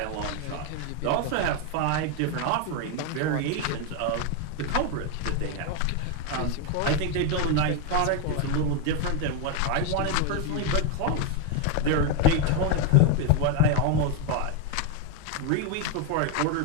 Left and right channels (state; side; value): different; both; correlation 0.01